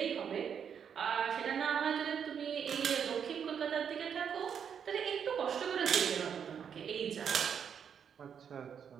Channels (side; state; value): left; quieter; 7.7 dB